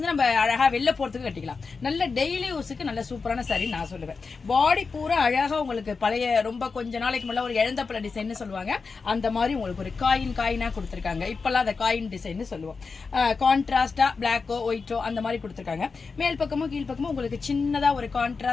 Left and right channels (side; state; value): right; quieter; 4.7 dB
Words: நம்ம அழகா வெளில போறதுக்கு கட்டிக்கலாம். நல்ல டெய்லி யூஸுக்கு நல்ல சூப்பரான சாரி நான் சொல்லுவேன். பாடி பூரா அழகா உங்களுக்கு பழைய ரொம்ப கொஞ்ச நாளைக்கு முன்னாடி ஒரு இழந்தப்பழ டிசைன் சொல்லுவாங்க, அந்த மாதிரி உங்களுக்கு ஒரு காயினா கொடுத்திருக்காங்க. இப்பெல்லாம் அந்த காயின் டிசைன் சொல்லுவோம். கான்ட்ராஸ்டா பிளாக்கோ ஒயிட்டோ அந்த மாதிரி கொடுத்திருக்காங்க. மேல் பக்கமும் கீழ் பக்கமும் உங்களுக்கு சின்னதா ஒரு